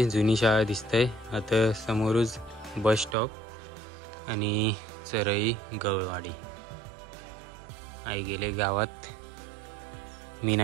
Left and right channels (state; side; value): drops out; left; at 3.2 s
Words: जुनी शाळा दिसते. आता समोरच बस स्टॉप आणि चरई गवळवाडी. आई गेले गावात. मी